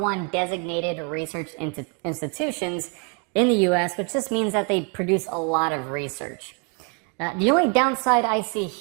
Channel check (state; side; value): quieter; left; 35.2 dB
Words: designated research institutions in the US, which just means that they produce a lot of research. The only downside I see